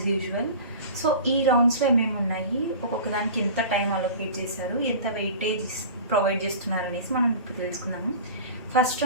యూజువల్. సో ఈ రౌండ్స్లో ఏమేమి ఉన్నాయి, ఒక్కొక్క దానికి ఎంత టైం అలొకేట్ చేశారు, ఎంత వెయిటేజ్ ప్రొవైడ్ చేస్తున్నారు అనేసి మనం ఇప్పుడు తెలుసుకున్నాము. ఫస్ట్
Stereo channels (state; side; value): inverted; both; correlation -0.37